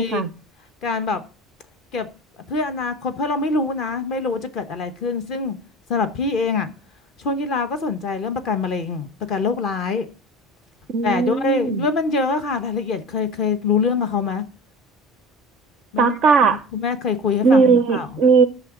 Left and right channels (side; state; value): both; normal; correlation 0.36